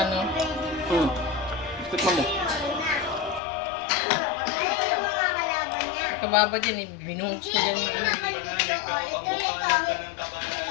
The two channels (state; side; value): drops out; right; at 3.4 s